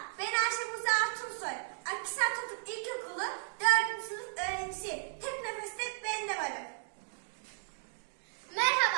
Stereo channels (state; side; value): silent; left; digital silence